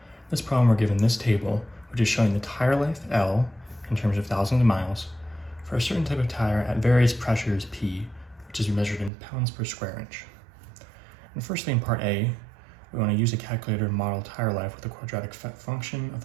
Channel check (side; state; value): left; drops out; at 9.1 s